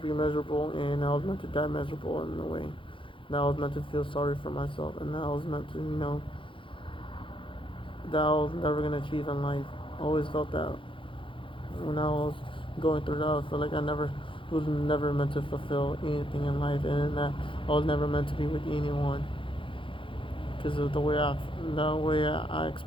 be miserable, and I was meant to die miserable in a way. That I was meant to feel sorry for myself, and that I was meant to, that I was never gonna achieve in life. I always felt that when I was going through that, I felt like I never was never meant to fulfill anything in life, and that I was never meant to be with anyone. because of the way I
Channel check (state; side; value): late; right; 0.25 ms